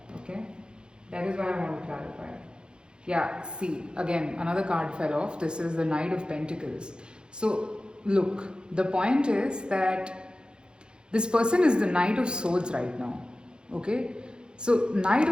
okay? That is why I want to clarify. Yeah, see, again, another card fell off. This is the Knight of Pentacles. So, look, the point is that this person is the Knight of Swords right now, okay? So, Knight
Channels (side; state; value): left; late; 0.049 ms